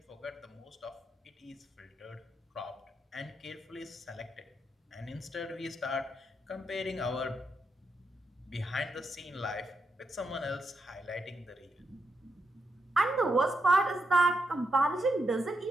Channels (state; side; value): normal; both; correlation 0.83